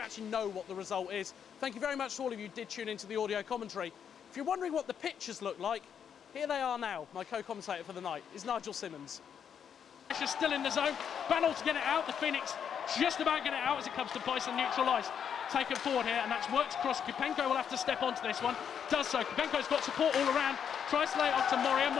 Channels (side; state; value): right; quieter; 8.0 dB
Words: actually know what the result is. Thank you very much to all of you who did tune into the audio commentary. If you're wondering what the pictures look like, here they are now. My co-commentator for the night is Nigel Simmonds. Pressure still in the zone. Battle to get it out. The Phoenix just about get it out as it comes to Bison neutralised. Taken forward here, and that's worked across. Kupenko will have to step onto this one. Does so. Kupenko's got support all around. Tries to lay it off to Moria.